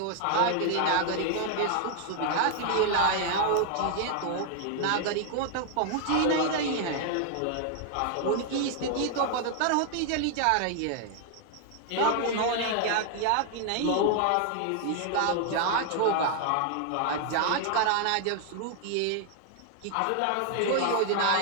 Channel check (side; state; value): both; different; correlation 0.00